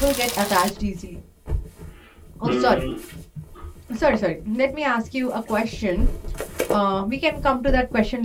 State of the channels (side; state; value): both; identical; correlation 1.00